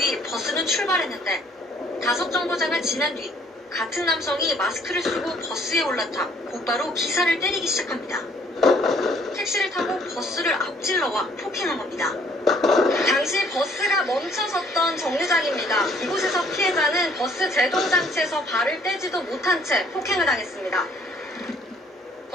버스는 출발했는데 5정거장을 지난 뒤 같은 남성이 마스크를 쓰고 버스에 올라타 곧바로 기사를 때리기 시작합니다. 택시를 타고 버스를 앞질러와 폭행한 겁니다. 당시 버스가 멈춰 멈춰섰던 정류장입니다. 이곳에서 피해자는 버스 제동장치에서 발을 떼지도 못한 채 폭행을 당했습니다.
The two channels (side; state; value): both; normal; correlation 0.61